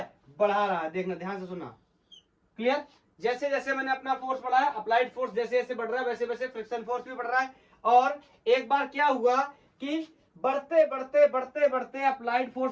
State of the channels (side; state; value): both; identical; correlation 1.00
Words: बढ़ा रहा है। देखना, ध्यान से सुनना, क्लियर। जैसे जैसे मैंने अपना फोर्स बढ़ाया, अप्लाइड फोर्स जैसे जैसे बढ़ रहा है, वैसे वैसे फ्रिक्शन फोर्स भी बढ़ रहा है। और एक बार क्या हुआ कि बढ़ते बढ़ते बढ़ते बढ़ते अप्लाइड